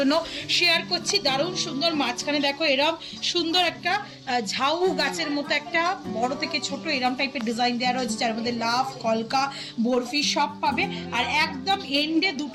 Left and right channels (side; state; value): both; identical; correlation 1.00